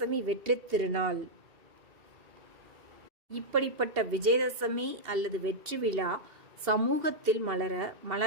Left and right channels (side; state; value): left; late; 2.8 ms